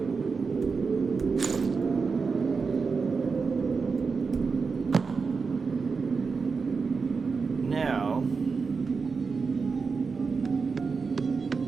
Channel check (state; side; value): quieter; left; 4.9 dB